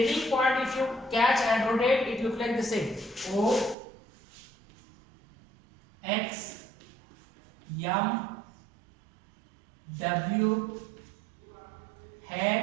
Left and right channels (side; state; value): left; drops out; at 3.8 s